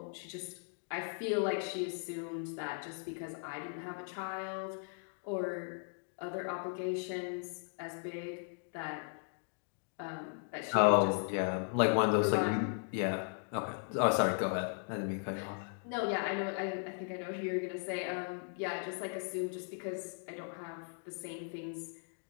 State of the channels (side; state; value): right; silent; 53 dB below the other